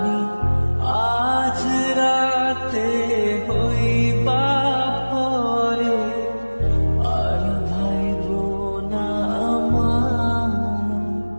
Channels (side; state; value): both; inverted; correlation -1.00